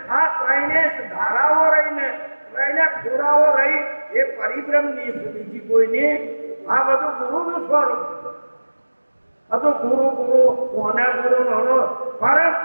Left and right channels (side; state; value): both; inverted; correlation -1.00